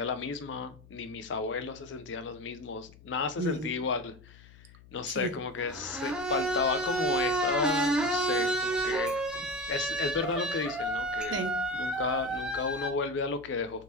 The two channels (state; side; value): noise; left; hum, 22 dB below the sound